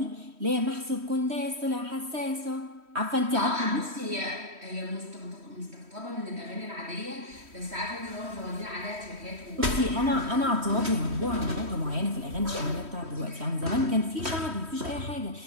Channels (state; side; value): late; left; 3.1 ms